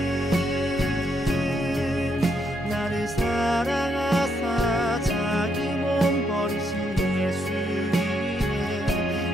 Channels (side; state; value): both; normal; correlation 0.76